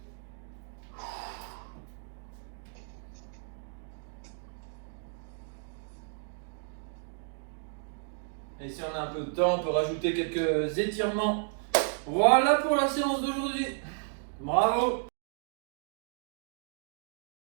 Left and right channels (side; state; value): left; silent; digital silence